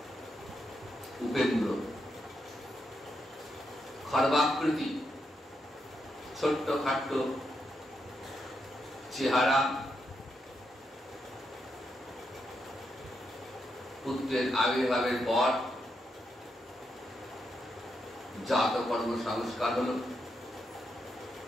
উপেন্দ্র, খর্বাকৃতি, ছোট্ট খাট্ট চেহারা, পুত্রের আবির্ভাবের পর জাতকর্ম সংস্কার হল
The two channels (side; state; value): both; normal; correlation 0.82